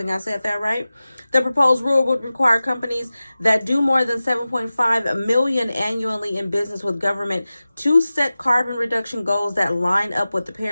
I said that right. The proposed rule would require companies that do more than 7.5 million annually in business with government to set carbon reduction goals that line up with the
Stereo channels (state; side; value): inverted; both; correlation -0.96